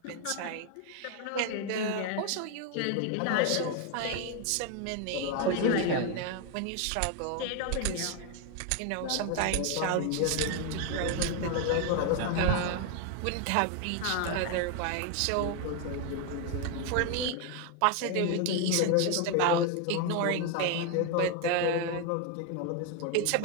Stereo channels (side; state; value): both; different; correlation 0.01